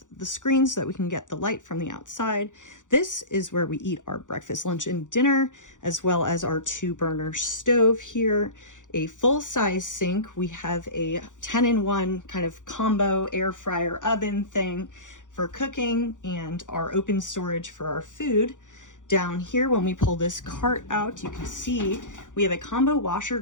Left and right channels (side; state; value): right; late; 0.87 ms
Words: the screens so that we can get the light from the outside. This is where we eat our breakfast, lunch, and dinner, as well as our 2-burner stove here. A full-size sink. We have a 10-in-1 kind of combo air fryer oven thing for cooking, and our open storage for our food. Down here, when we pull this cart out, you can see we have a combo washer